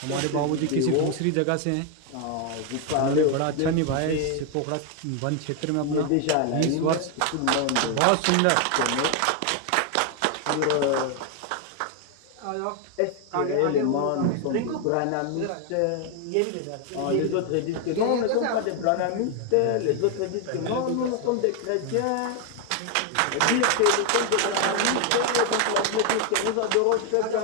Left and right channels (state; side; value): different; both; correlation 0.01